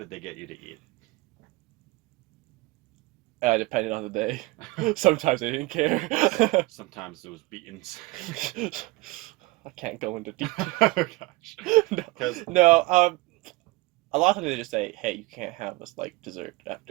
they get you to eat? Depending on the day. Sometimes they didn't care. Sometimes it was beatings. I can't go into detail. Oh, gosh. No, a lot of times they just say, hey, you can't have this, like, dessert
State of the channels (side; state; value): left; quieter; 22.0 dB